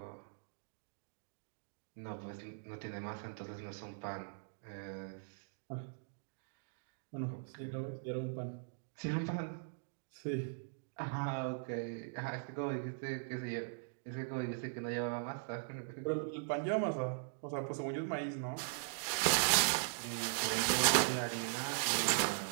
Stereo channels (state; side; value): silent; left; digital silence